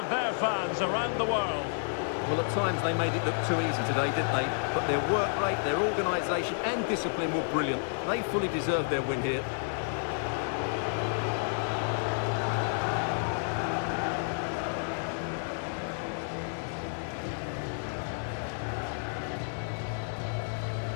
their fans around the world. Well, at times they made it look too easy today, didn't they? But their work rate, their organisation and discipline were brilliant. They fully deserved their win here.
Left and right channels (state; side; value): silent; right; digital silence